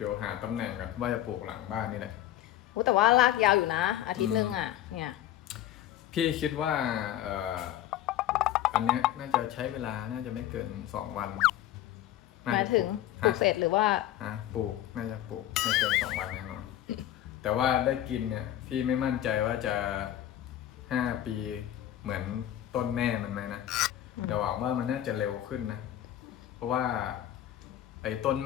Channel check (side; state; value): right; quieter; 12.7 dB